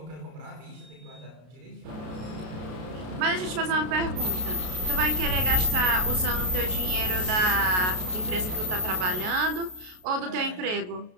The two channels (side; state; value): left; late; 33 ms